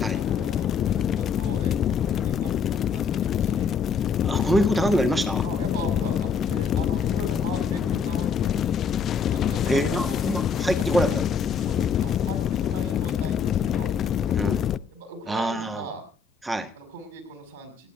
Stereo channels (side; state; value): right; quieter; 5.6 dB